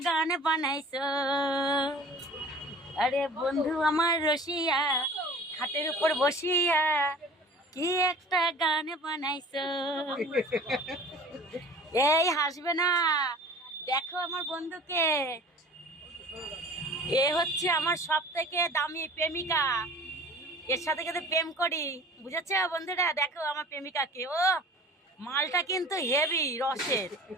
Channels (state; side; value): normal; both; correlation 0.44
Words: গান বানাইছো। আরে বন্ধু আমার রসিয়া খাটের উপর বসিয়া কি একটা গান বানাইছো। এই হাসবে না, দেখো আমার বন্ধুকে, এ হচ্ছে আমার সব থেকে দামি প্রেমিকা, এর সাথে কিন্তু প্রেম করি, বুঝেছ বন্ধুরা? দেখো আমার প্রেমিকাকে, ও মালটা কিন্তু হেভি রসের।